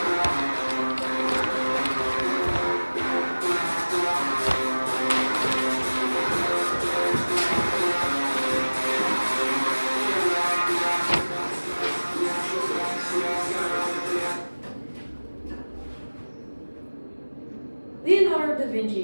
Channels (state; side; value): inverted; both; correlation -1.00